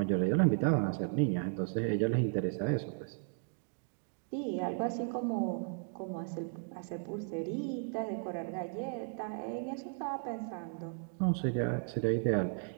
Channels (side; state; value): left; silent; 54 dB below the other